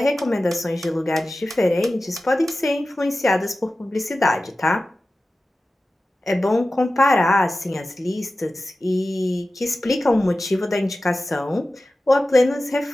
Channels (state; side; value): normal; both; correlation 0.95